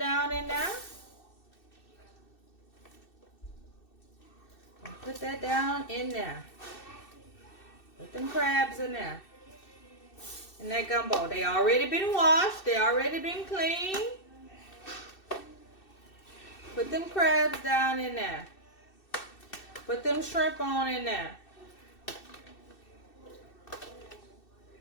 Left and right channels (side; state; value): right; late; 2.6 ms